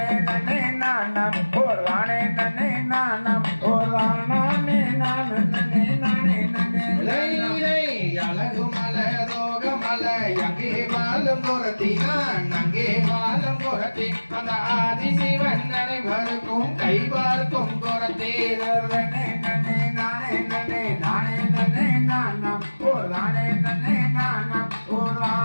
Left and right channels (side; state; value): both; inverted; correlation -1.00